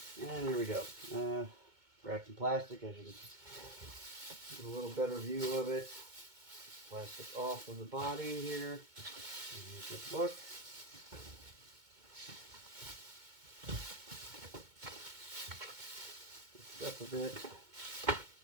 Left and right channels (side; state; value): left; late; 2.2 ms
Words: And here we go. Wrapped in plastic, as you can get a little better view of it. Plastic off of the body here. And here's the book. Up a bit.